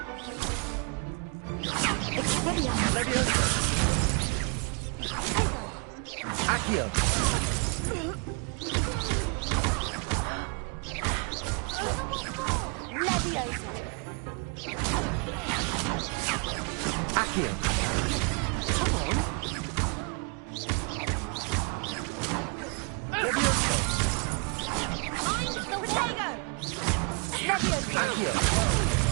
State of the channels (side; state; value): left; quieter; 36.0 dB